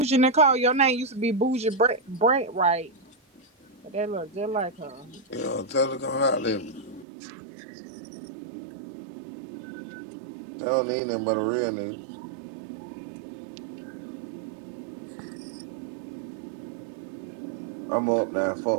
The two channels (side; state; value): left; drops out; at 7.1 s